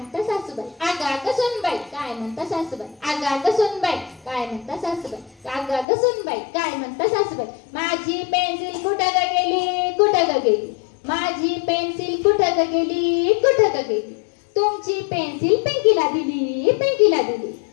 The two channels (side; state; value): right; drops out; at 5.9 s